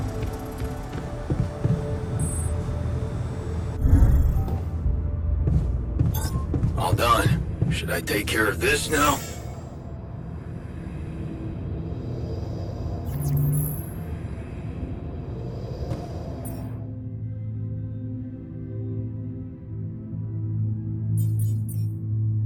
All done. Should I take care of this now?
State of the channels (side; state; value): both; identical; correlation 1.00